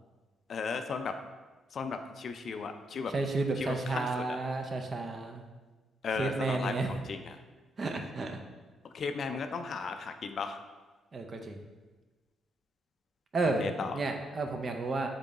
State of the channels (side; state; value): both; normal; correlation 0.77